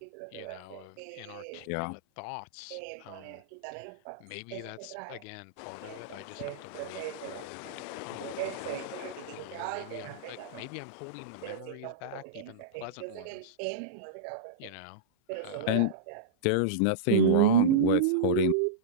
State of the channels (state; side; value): different; both; correlation -0.05